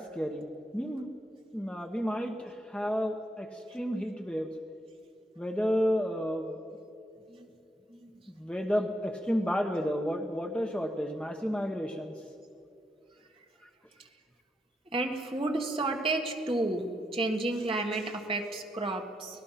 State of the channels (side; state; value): both; normal; correlation 0.80